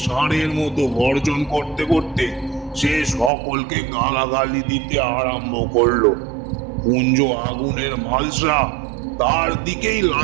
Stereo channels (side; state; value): left; drops out; at 3.3 s